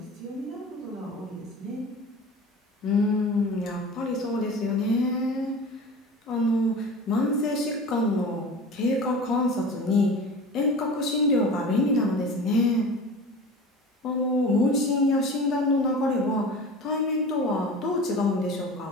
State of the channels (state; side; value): normal; both; correlation 0.36